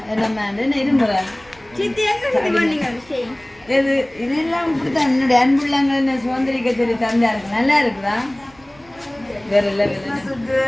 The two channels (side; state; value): right; noise; rumble, 27 dB below the sound